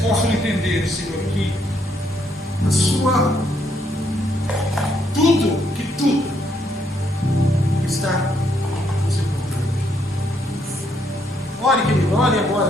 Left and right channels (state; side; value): normal; both; correlation 0.73